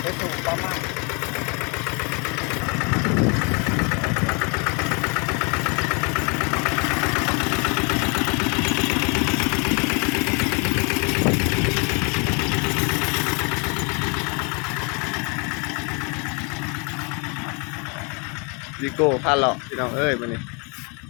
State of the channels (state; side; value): quieter; right; 33.5 dB